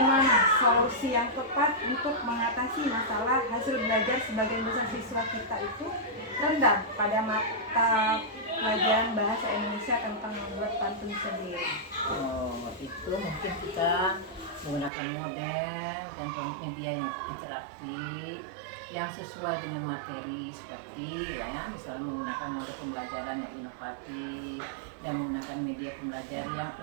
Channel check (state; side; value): drops out; left; at 14.9 s